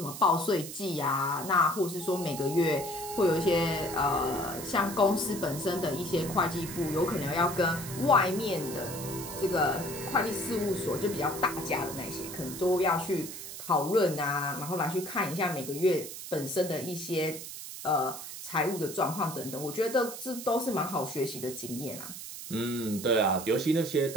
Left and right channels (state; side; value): noise; right; hiss, 10 dB below the sound